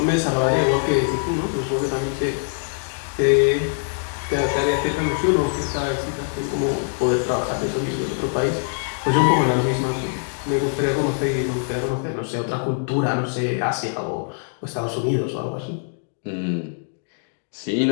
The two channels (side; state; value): right; silent; digital silence